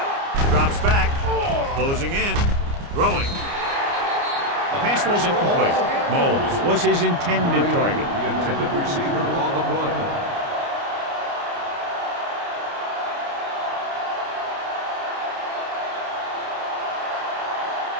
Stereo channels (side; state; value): left; late; 29 ms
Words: Drops back. Closing in. Throwing. The pass falls incomplete. Moles was his intended target. The intended receiver on the play.